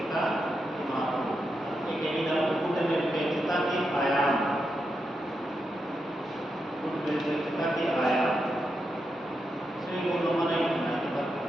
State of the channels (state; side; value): normal; both; correlation 0.85